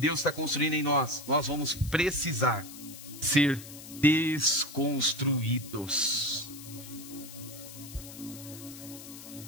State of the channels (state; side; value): noise; left; hiss, 14 dB below the sound